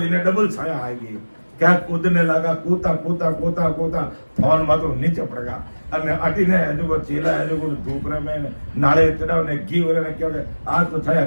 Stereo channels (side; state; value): both; inverted; correlation -1.00